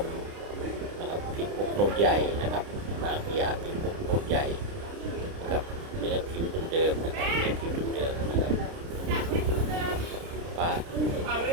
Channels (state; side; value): late; left; 30 ms